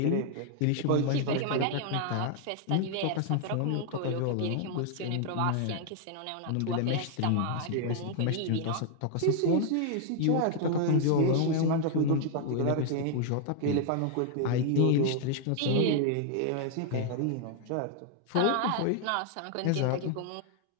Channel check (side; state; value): both; different; correlation 0.00